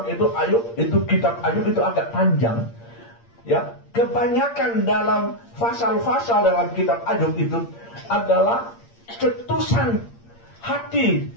itu Ayub, itu kitab Ayub itu agak panjang, ya. Kebanyakan dalam pasal-pasal dalam kitab Ayub itu adalah cetusan hati,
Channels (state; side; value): late; right; 8.7 ms